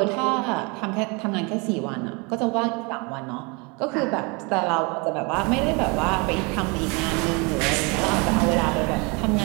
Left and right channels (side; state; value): left; quieter; 29.6 dB